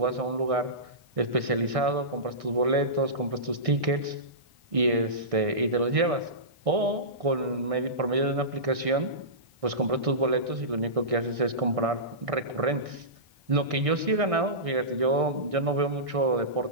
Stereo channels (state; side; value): late; left; 1.6 ms